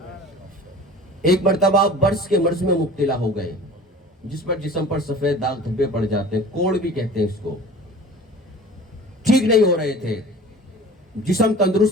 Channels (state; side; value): normal; both; correlation 0.42